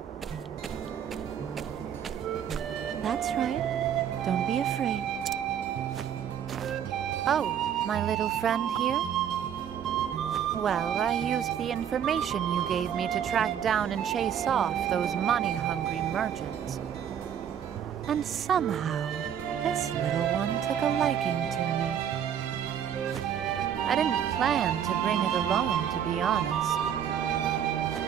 That's right. Don't be afraid. Oh, my little friend here? Well, I used the information you gave me to track down and chase off those money-hungry merchants. And somehow, this little one took a liking to me. I didn't plan to bring it along, to be honest.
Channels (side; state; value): left; quieter; 9.0 dB